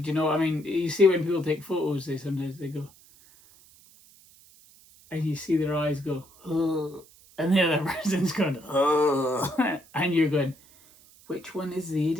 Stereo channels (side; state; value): right; noise; hiss, 26 dB below the sound